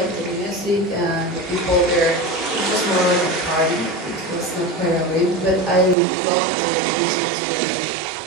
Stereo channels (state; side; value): drops out; left; at 6.0 s